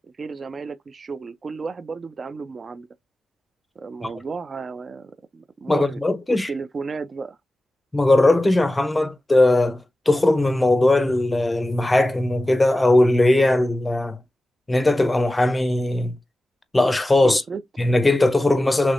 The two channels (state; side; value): normal; both; correlation 0.95